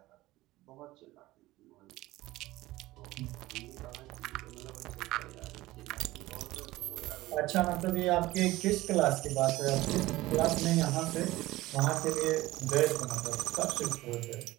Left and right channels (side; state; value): left; quieter; 17.9 dB